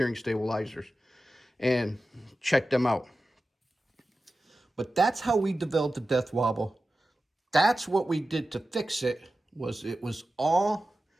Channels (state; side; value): normal; both; correlation 0.94